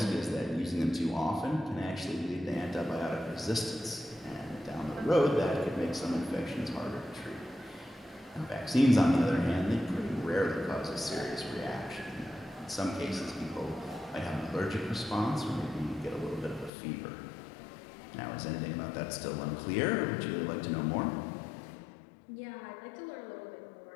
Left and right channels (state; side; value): drops out; right; at 16.7 s